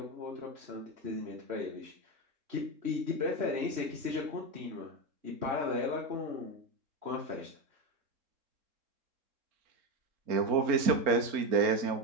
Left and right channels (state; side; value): late; left; 3.7 ms